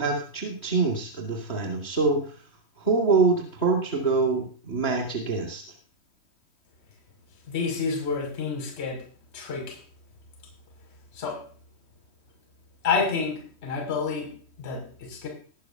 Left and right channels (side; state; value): right; late; 3.1 ms